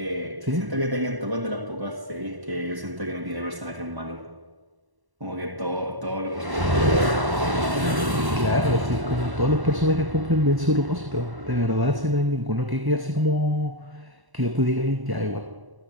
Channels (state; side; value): late; left; 1.1 ms